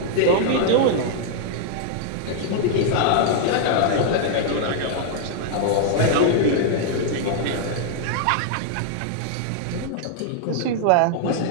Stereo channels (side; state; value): both; different; correlation 0.00